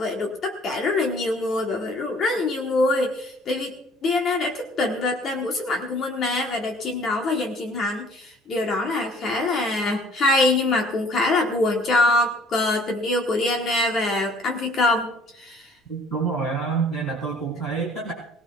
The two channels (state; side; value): normal; both; correlation 0.55